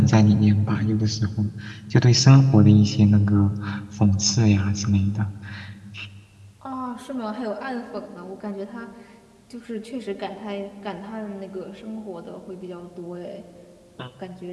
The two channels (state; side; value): identical; both; correlation 1.00